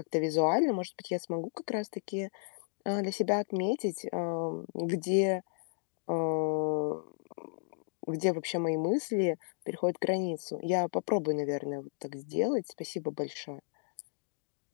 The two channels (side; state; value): right; silent; digital silence